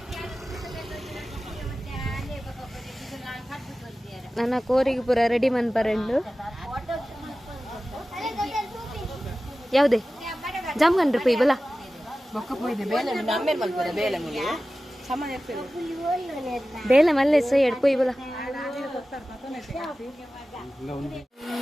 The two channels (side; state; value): both; normal; correlation 0.95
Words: ನನ್ನ ಕೋರಿಗೆ ಪೂರ ರೆಡಿ ಮನ್ಪರೆಂಡು ಯಾವುದೇ ಜಾಮ್ಗಂಡ್ರಿ ಪೈ ಬಲ ಬೇಲೆ ಮಲ್ಲೆ ಸೈ ಎಡ್ ಪೊಯ್ ಬಲ